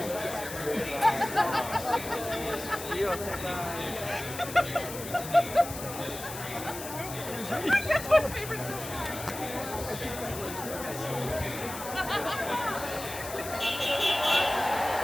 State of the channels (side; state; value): left; noise; hiss, 10 dB below the sound